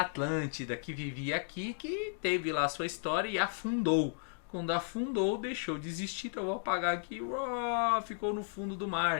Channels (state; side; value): silent; right; digital silence